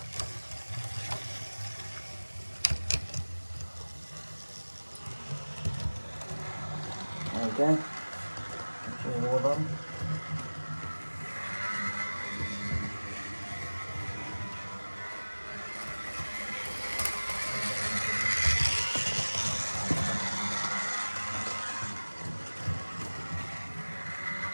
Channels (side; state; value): both; inverted; correlation -1.00